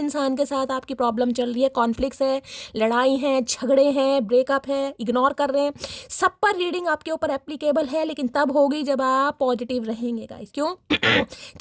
के साथ आपकी प्रॉब्लम चल रही है, कॉन्फ्लिक्ट्स है, लड़ाई है, झगड़े हैं, ब्रेकअप है, इग्नोर कर रहे हैं, सब पर रीडिंग आपके ऊपर एप्लीकेबल है, लेकिन तब होगी जब आप पॉजिटिव रहेंगे गाइस। क्यों?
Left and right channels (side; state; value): both; identical; correlation 1.00